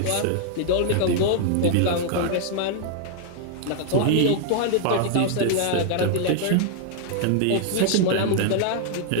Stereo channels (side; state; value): both; different; correlation 0.00